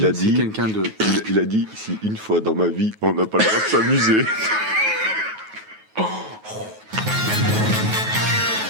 c'est quelqu'un de. Il a dit si une fois dans ma vie on n'a pas le droit de s'amuser.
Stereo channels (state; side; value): late; left; 9.3 ms